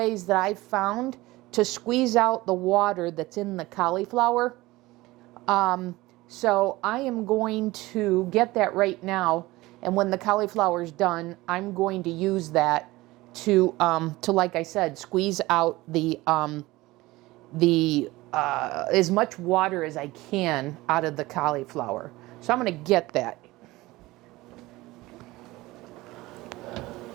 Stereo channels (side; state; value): left; quieter; 19.5 dB